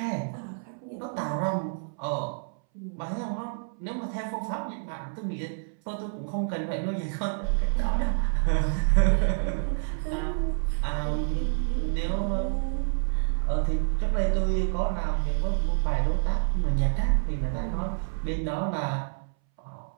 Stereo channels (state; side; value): silent; left; 59 dB below the other